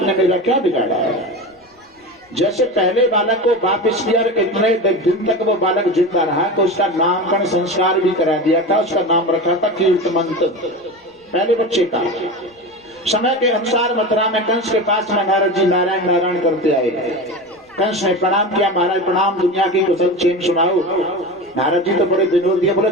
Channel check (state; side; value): normal; both; correlation 0.26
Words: ने मेरा क्या बिगाड़ा है? जैसे पहले बालक को वापस किया, इतने दिन तक वो बालक जिंदा रहा तो उसका नामकरण संस्कार भी करा दिया था। उसका नाम रखा था कीर्तमंत, पहले बच्चे का। समय के अनुसार मथुरा में कंस के पास में नारद जी नारायण नारायण करते आए। कंस ने प्रणाम किया, महाराज प्रणाम, दुनिया की कुशल क्षेम सुनाओ। नारद जी तो बड़े विनोदी है, बोले